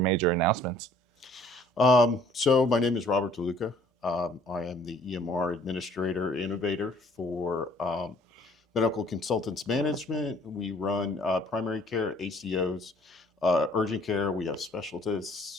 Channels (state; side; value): normal; both; correlation 0.57